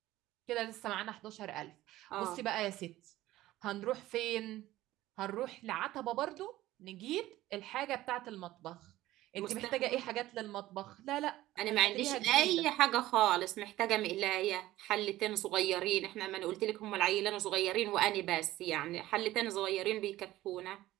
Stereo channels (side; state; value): left; quieter; 15.9 dB